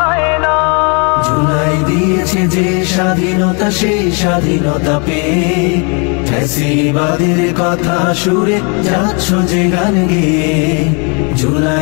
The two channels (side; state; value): right; quieter; 35.1 dB